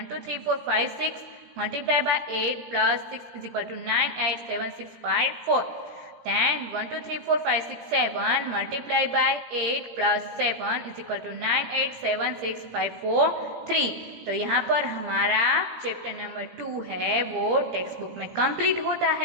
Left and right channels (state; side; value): late; left; 17 ms